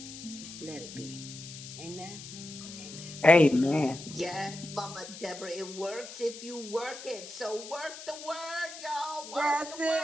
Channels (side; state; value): left; noise; hiss, 13 dB below the sound